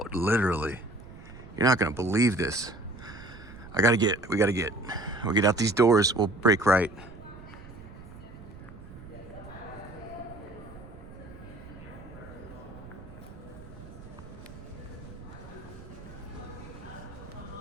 literally. You're not gonna believe this. We'll get out these doors. We'll break right.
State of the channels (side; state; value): right; noise; rumble, 16 dB below the sound